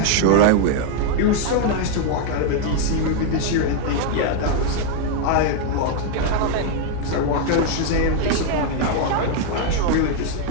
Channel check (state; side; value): different; both; correlation 0.00